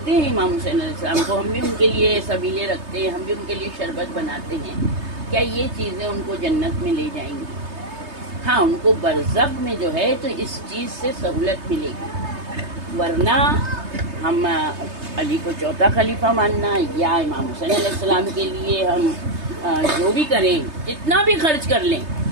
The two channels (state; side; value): late; left; 3.3 ms